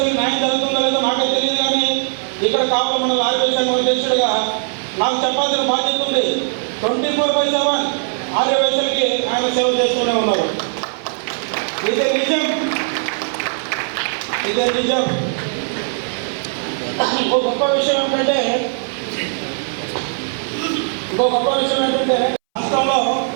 న్యాయం జరుగుతుందో లేదో నాకే తెలియదు, కానీ ఇక్కడ కావలి మండల ఆర్యవైశ్య సంఘం అధ్యక్షుడిగా నాకు చెప్పాల్సిన బాధ్యత ఉంది. 24/7 ఆర్యవైశ్యులకి ఆయన సేవ చేస్తూనే ఉన్నారు. ఇదే నిజం. ఇంకో గొప్ప విషయం ఏంటంటే రాష్ట్రంలో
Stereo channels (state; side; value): silent; left; 64 dB below the other